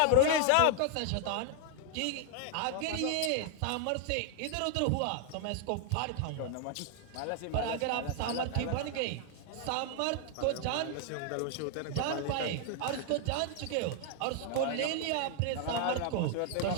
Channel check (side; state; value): both; different; correlation 0.00